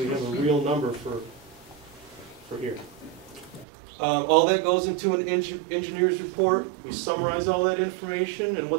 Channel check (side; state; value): left; drops out; at 3.7 s